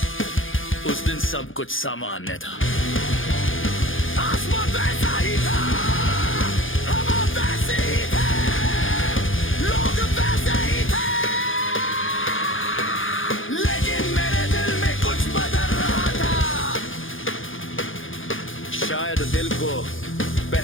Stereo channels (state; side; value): late; right; 0.58 ms